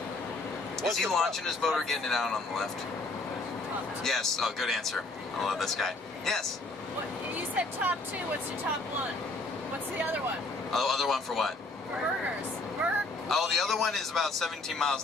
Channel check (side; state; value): right; quieter; 3.1 dB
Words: Is he launching his boat or getting it out on the left? Yes. Oh, good answer. I love this guy. Yes. What, you said top 2. What's your top 1? What's the other one? Oh, other one for what? Burgers. Oh, the other one is about 17 miles